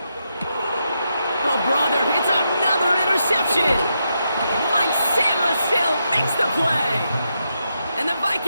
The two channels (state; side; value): inverted; both; correlation -0.83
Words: Oh, brother, it's another interception. Mike Samuel makes the play. And the